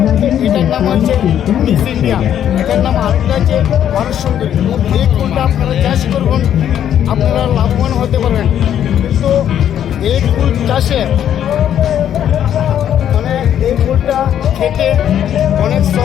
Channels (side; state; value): right; quieter; 10.1 dB